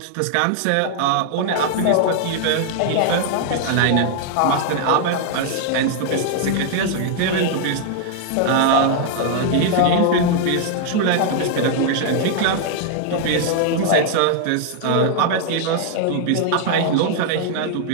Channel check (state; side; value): different; both; correlation 0.00